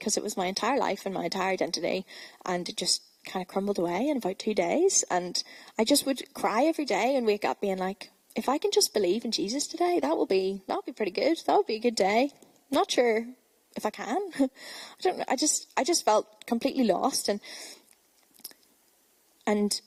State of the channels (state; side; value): identical; both; correlation 1.00